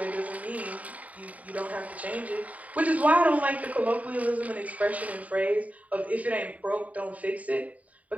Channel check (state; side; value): late; left; 0.070 ms